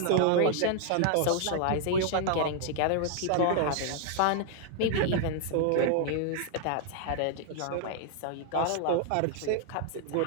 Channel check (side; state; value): both; different; correlation 0.00